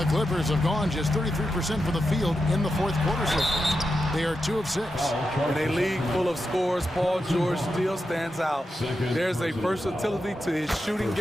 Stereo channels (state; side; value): normal; both; correlation 0.88